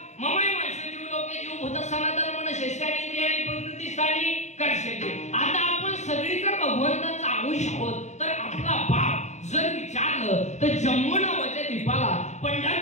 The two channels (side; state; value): right; late; 0.33 ms